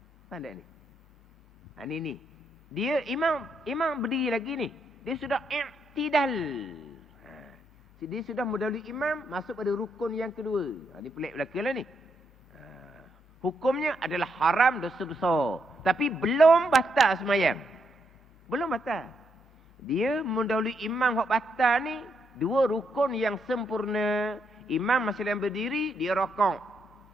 Pandai ni. Ni. Dia imam berdiri lagi ni. Dia sudah i'tidal. Dia sudah mendahului imam masuk pada rukun yang kedua. Ni pelik belaka lah ni. Hukumnya adalah haram, dosa besar. Tapi belum batal semayang. Belum batal. Dia mendahului imam hak batal ni, 2 rukun yang sempurna. Imam masih dalam berdiri, dia rokok.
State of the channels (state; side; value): normal; both; correlation 0.78